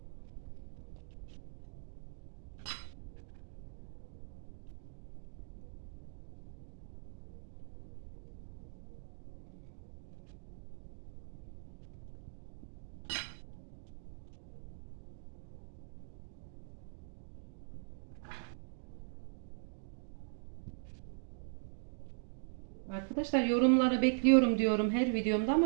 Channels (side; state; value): left; silent; digital silence